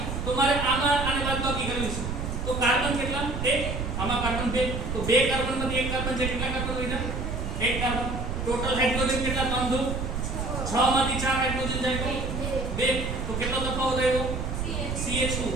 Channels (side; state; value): right; noise; rumble, 3 dB below the sound